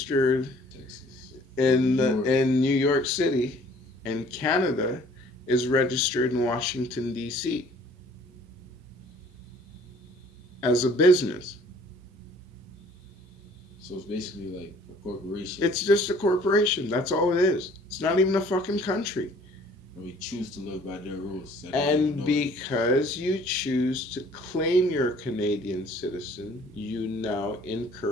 Texas. in New York. in New York City, and Canada is registered in Washington D.C. as a business. So it's basically like a corporation. It's just a corporation. That's all it is. It's not even a fucking country. And we choose to live by their rules. And because you choose to claim you're a Canadian citizen, you now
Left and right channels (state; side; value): normal; both; correlation 0.55